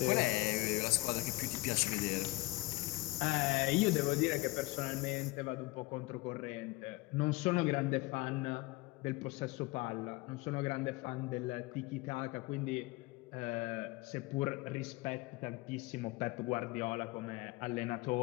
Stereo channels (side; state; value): right; quieter; 21.5 dB